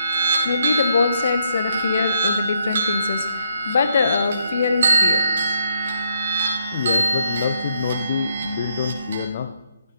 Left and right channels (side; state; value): both; inverted; correlation -0.74